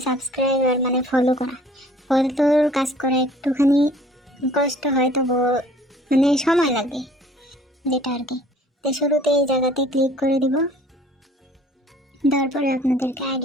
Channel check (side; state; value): both; normal; correlation 0.53